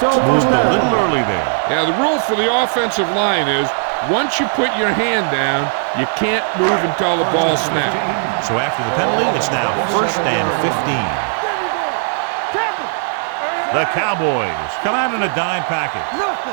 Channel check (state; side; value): silent; left; digital silence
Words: moved a little early there. Yeah, the rule for the offensive line is once you put your hand down, you can't move until the ball snaps. So after the penalty, it's now 1st and 15. The Cowboys come out in a dime package.